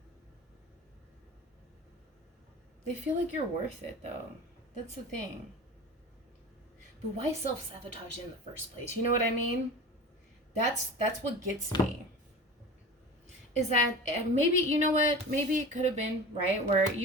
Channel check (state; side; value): normal; both; correlation 0.34